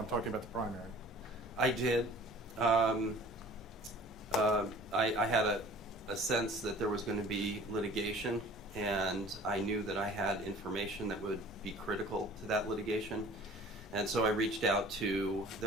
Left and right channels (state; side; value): noise; right; hum, 30 dB below the sound